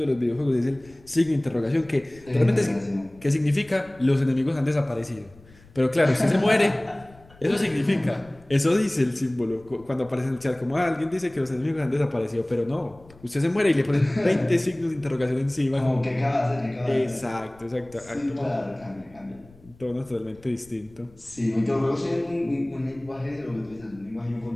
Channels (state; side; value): noise; left; rumble, 25 dB below the sound